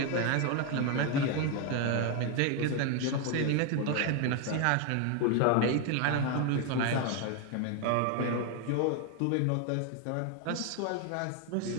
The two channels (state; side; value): different; both; correlation 0.01